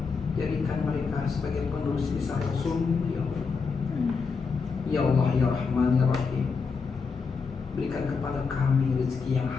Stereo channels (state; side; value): quieter; right; 5.1 dB